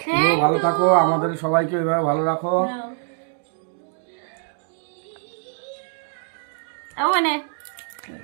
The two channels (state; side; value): silent; left; 63 dB below the other